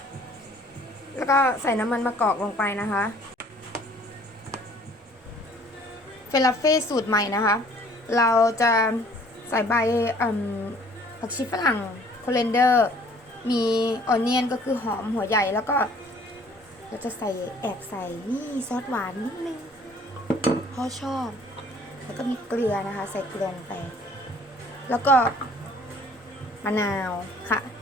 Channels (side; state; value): both; normal; correlation 0.56